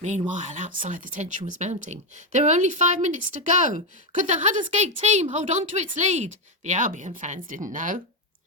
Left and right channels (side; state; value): both; normal; correlation 0.07